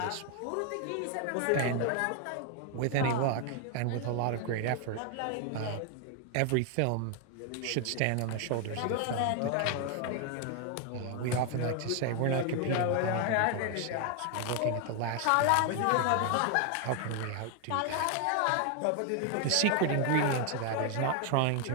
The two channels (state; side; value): different; both; correlation 0.01